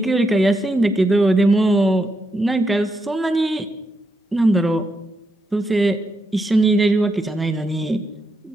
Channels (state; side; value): normal; both; correlation 0.82